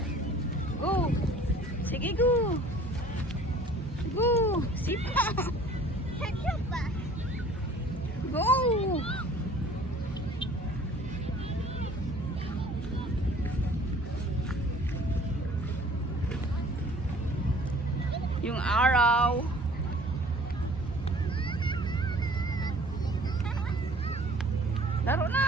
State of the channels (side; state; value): both; normal; correlation 0.51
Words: Go. Sige, go. Go. Sipa. Go. Yung araw. Laro